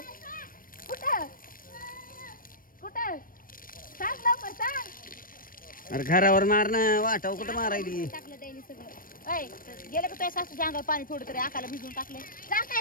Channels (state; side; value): late; right; 0.41 ms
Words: कुठं कुठं सांग लवकर सांग अरे घरावर मारणं वाटाव कुठं मारायली टाकलं त्याने सगळं ऐ गेलं का तुझ्या सासूच्या अंगावर पाणी थोडं तरी आकाला भिजून टाकले